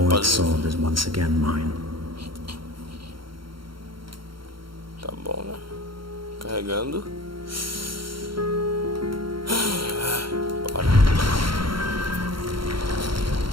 sword is once again mine. Tá bom, né? Carregando. Bora.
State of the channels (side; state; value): left; late; 0.73 ms